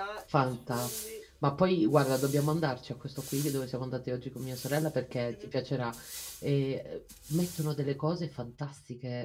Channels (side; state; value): both; identical; correlation 1.00